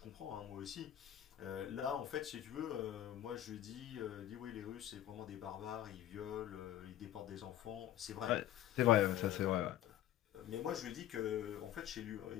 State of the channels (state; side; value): quieter; right; 12.3 dB